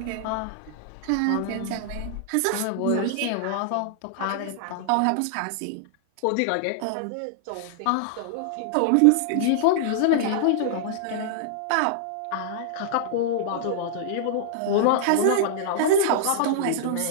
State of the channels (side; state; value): both; different; correlation -0.01